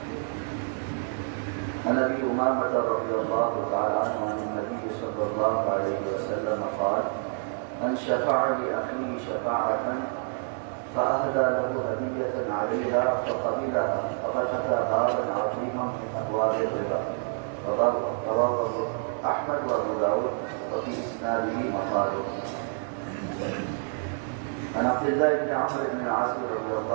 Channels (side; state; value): left; silent; 59 dB below the other